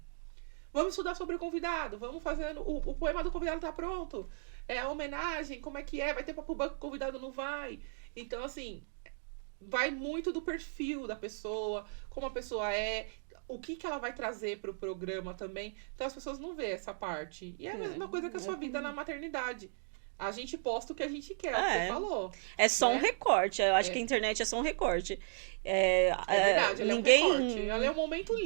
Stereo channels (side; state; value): left; silent; digital silence